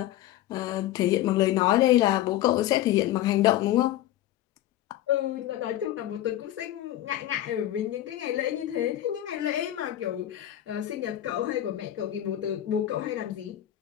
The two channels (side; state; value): right; quieter; 13.4 dB